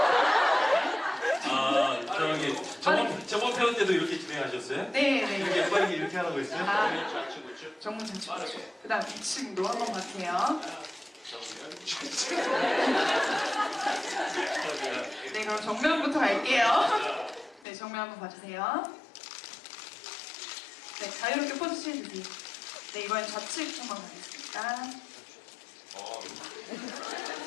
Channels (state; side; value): drops out; right; at 17.7 s